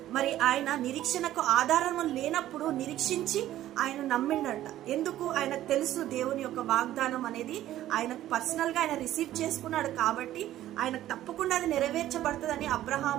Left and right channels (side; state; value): left; quieter; 13.5 dB